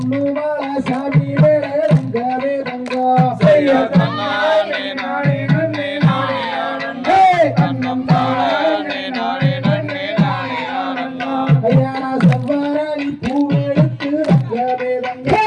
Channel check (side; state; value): both; identical; correlation 1.00